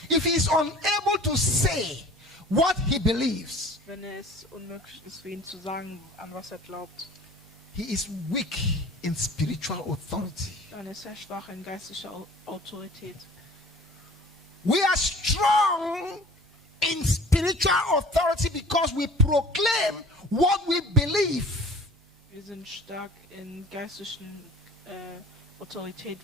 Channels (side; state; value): both; normal; correlation 0.45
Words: if he is unable to say what he believes, wenn es unmöglich ist für ihn zu sagen, an was er glaubt, he is weak in spiritual authority. dann ist er schwach in geistlicher Autorität. We are strong in spiritual authority because we proclaim what we believe. Wir sind stark in geistlichen Autorität,